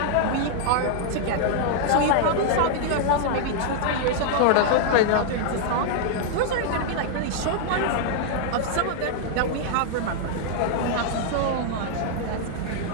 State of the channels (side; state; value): both; different; correlation -0.01